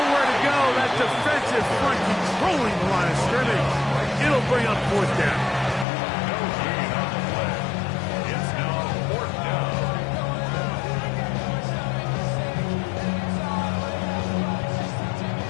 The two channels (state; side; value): drops out; right; at 5.9 s